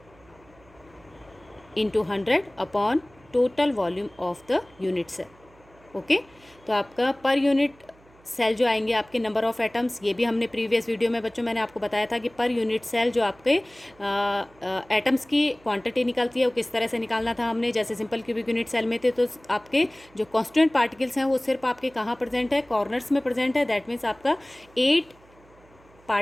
into 100 upon total volume of the unit cell. Okay. तो आपका पर यूनिट सेल जो आएंगे आपके नंबर ऑफ एटम्स, ये भी हमने प्रीवियस वीडियो में बच्चों मैंने आपको बताया था कि पर यूनिट सेल जो आपके एटम्स की क्वांटिटी निकलती है वो किस तरह से निकालना था हमने। जैसे सिंपल क्यूबिक यूनिट सेल में थे तो आपके जो कांस्टेंट पार्टिकल्स हैं वो सिर्फ आपके कहाँ प्रेजेंट है, कॉर्नर्स में प्रेजेंट है। दैट मीन्स आपका 8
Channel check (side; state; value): right; noise; hum, 28 dB below the sound